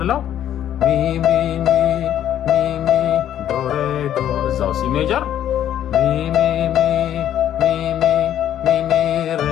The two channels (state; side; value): quieter; right; 11.0 dB